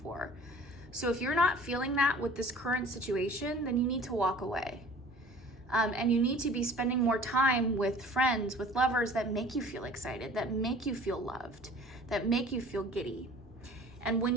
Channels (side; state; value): both; normal; correlation 0.47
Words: So if you're not feeling that with this current situation, then you need to walk away. And you need to be spending more time with friends, with lovers that make you feel excited, that make you feel loved, that make you feel giddy. And when